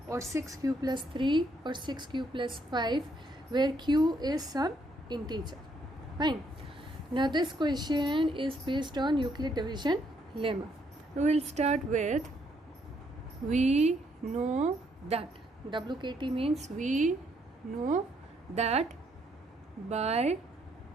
or 6q plus 3 or 6q plus 5 where q is some integer. Fine. Now this question is based on Euclid division lemma. We will start with we know that. WKT means we know that by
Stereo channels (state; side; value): normal; both; correlation 0.71